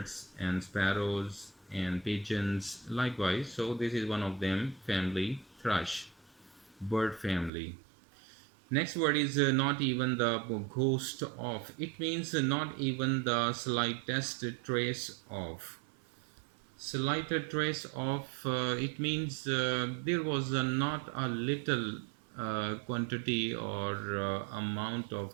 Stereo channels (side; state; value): left; drops out; at 7.5 s